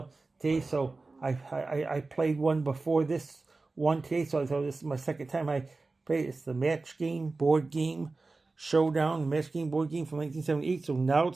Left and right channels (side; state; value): left; quieter; 3.6 dB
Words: today. So I played one before this one today, so I thought this is my second time I played. It's the match game board game showdown, match game board game from 1978. So now